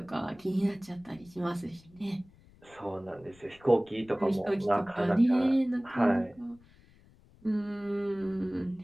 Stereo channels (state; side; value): noise; left; rumble, 27 dB below the sound